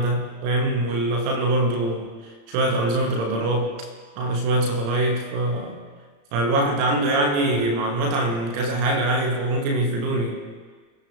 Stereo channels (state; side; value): late; left; 35 ms